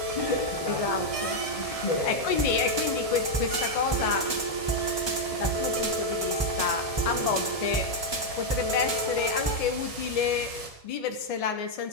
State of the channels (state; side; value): late; right; 1.7 ms